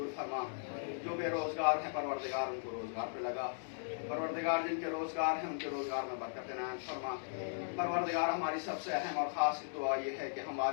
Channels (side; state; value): right; silent; digital silence